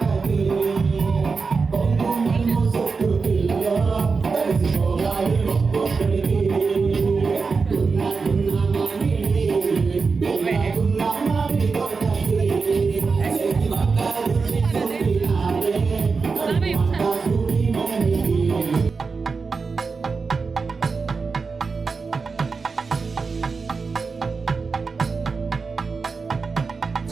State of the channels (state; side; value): quieter; left; 4.7 dB